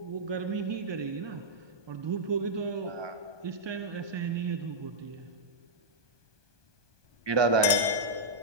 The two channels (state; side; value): late; left; 1.2 ms